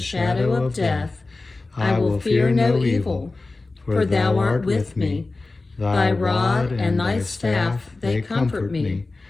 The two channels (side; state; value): right; quieter; 3.4 dB